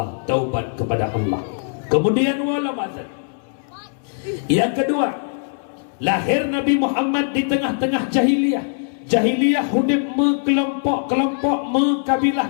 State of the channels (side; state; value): right; silent; 65 dB below the other